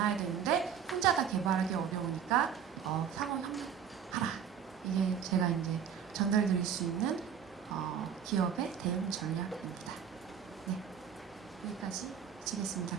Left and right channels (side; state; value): left; quieter; 8.0 dB